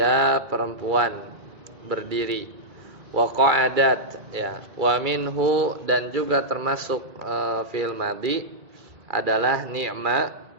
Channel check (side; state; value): left; late; 2.3 ms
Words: perempuan berdiri. Wa qa'adat ya, wa minhu, dan juga termasuk fi'il madhi adalah ni'ma